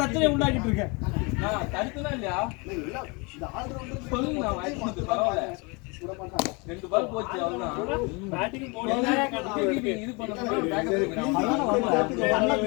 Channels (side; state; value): right; quieter; 29.4 dB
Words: உண்டாக்கிட்டு இருக்க. நான் தடுத்துதான் இல்லையா? இல்ல இந்த ஆல் ரவுண்டர் சொல்லுங்க நான் வாய்ப்பு பரவாயில்ல. கூட பண்றாங்க. 2 பால் போச்சு அவ்வளவுதான். பேட்டிங் போடுங்க. இது பண்ணனும் பேக்கப்